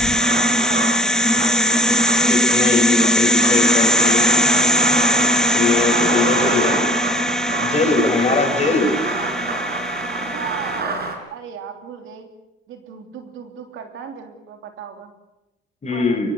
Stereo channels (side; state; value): both; normal; correlation 0.49